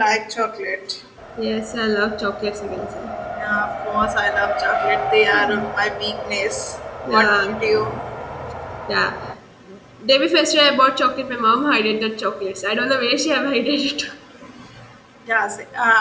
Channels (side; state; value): both; identical; correlation 1.00